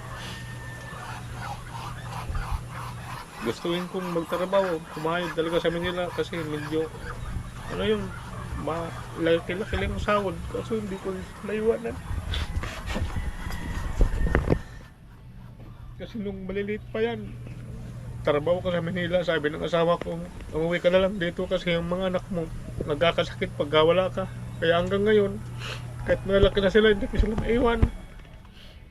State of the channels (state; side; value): identical; both; correlation 1.00